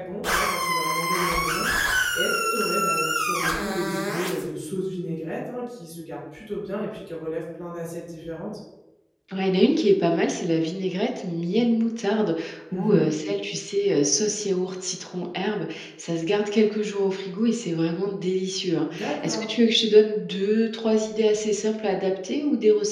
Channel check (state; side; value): identical; both; correlation 1.00